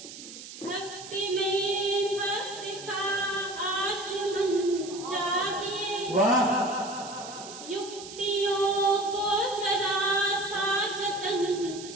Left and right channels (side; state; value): right; noise; hiss, 13 dB below the sound